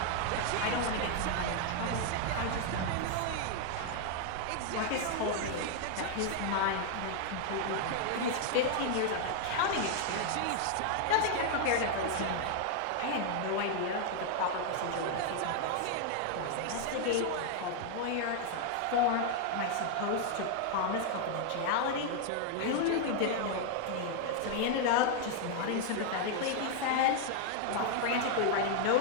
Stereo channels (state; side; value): different; both; correlation 0.00